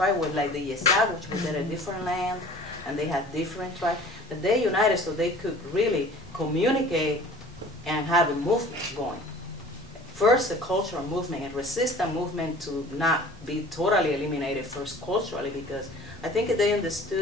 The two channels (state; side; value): normal; both; correlation 0.46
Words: like the Yesa, which was in a different land, and they had different tribes. But they united so they could really communicate and have a movement going. First, a cultural movement, a resistance movement to not be totally eliminated first culturally, because I think they